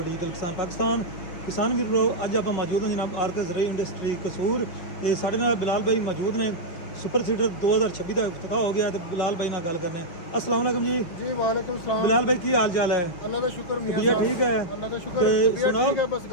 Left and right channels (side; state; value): right; late; 5.5 ms